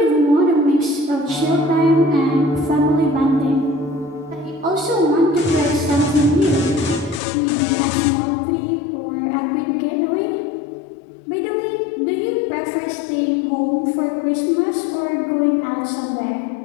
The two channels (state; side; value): drops out; right; at 7.2 s